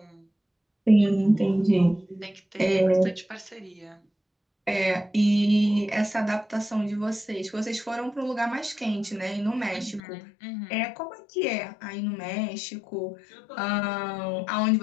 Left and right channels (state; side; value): drops out; right; at 10.0 s